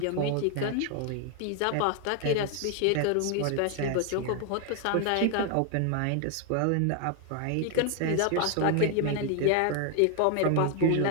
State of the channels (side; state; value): both; different; correlation 0.01